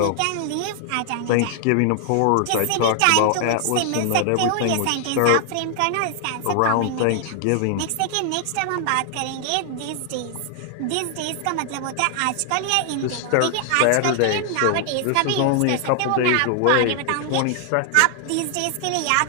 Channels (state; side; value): different; both; correlation 0.00